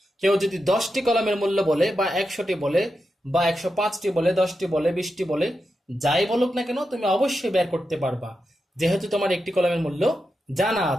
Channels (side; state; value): both; normal; correlation 0.88